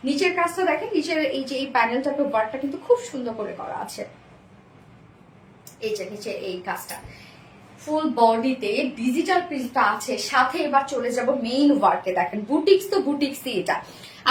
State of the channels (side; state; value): both; identical; correlation 1.00